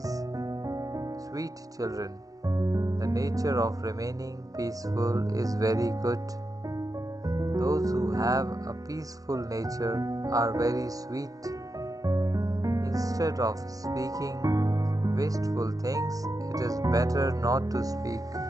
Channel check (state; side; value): late; left; 0.17 ms